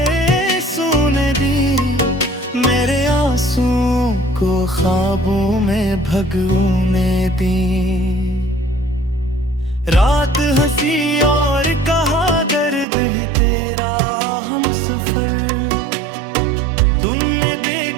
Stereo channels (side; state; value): left; drops out; at 12.9 s